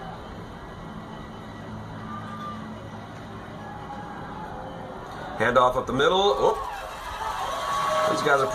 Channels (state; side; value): identical; both; correlation 1.00